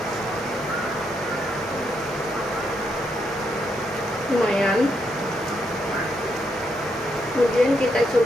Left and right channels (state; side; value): normal; both; correlation 0.78